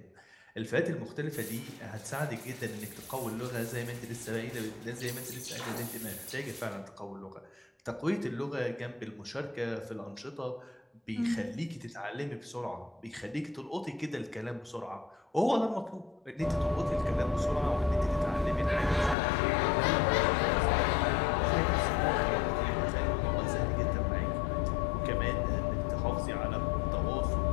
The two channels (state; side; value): drops out; right; at 19.2 s